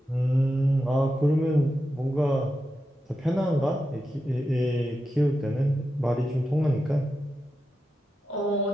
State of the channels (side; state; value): both; normal; correlation 0.89